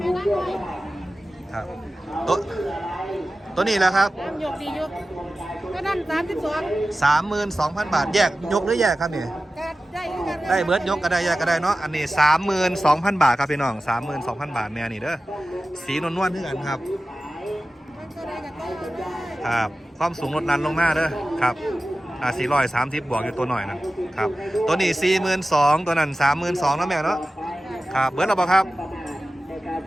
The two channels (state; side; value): normal; both; correlation 0.95